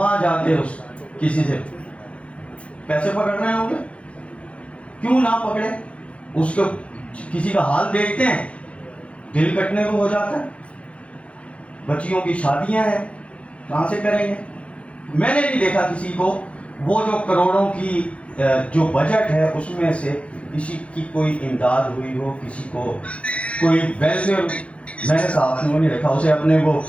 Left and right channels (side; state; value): right; late; 0.062 ms